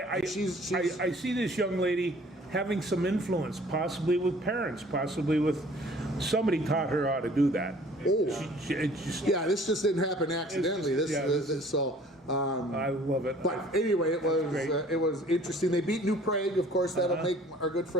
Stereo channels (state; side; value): normal; both; correlation 0.52